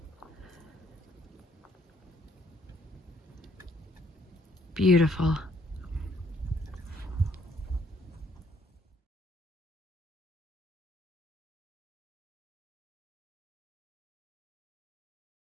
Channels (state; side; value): normal; both; correlation 0.65